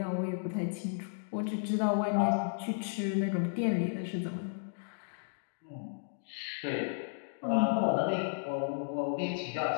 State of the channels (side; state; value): right; silent; digital silence